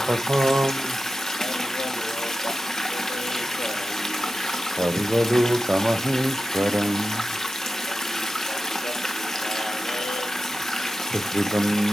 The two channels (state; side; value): normal; both; correlation 0.93